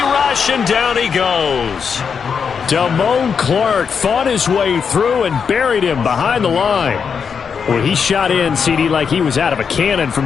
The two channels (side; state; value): right; quieter; 6.4 dB